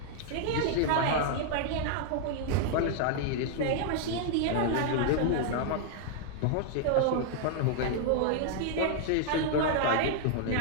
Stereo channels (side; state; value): both; different; correlation 0.00